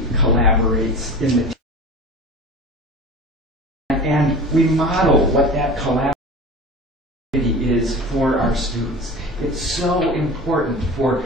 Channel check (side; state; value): both; normal; correlation 0.34